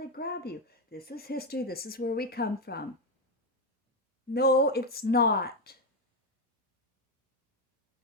grab you. This is history. This is where we come from. No, it's not.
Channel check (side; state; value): both; normal; correlation 0.08